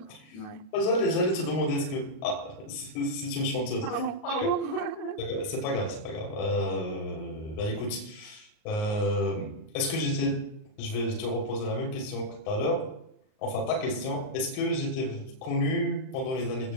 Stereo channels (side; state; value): right; late; 38 ms